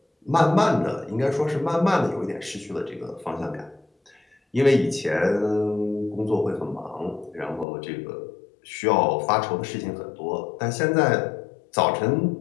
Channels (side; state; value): right; drops out; at 7.7 s